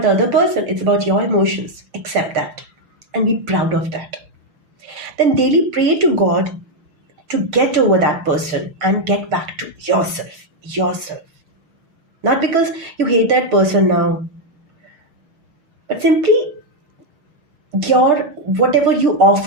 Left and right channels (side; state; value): left; late; 6.2 ms